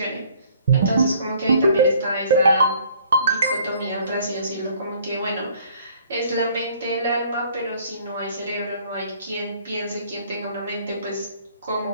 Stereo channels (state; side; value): inverted; both; correlation -0.58